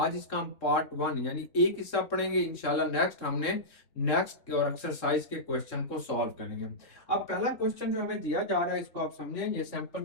इसका हम पार्ट 1 यानी एक हिस्सा पढ़ेंगे, इंशाल्लाह नेक्स्ट हमने नेक्स्ट और एक्सरसाइज के क्वेश्चन को सॉल्व करेंगे। अब पहला क्वेश्चन जो हमें दिया जा रहा है इसको आप समझें, ये सैंपल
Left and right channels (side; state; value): right; late; 3.6 ms